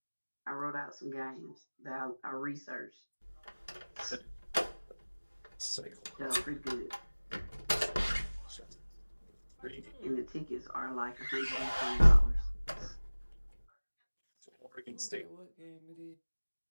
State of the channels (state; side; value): inverted; both; correlation -1.00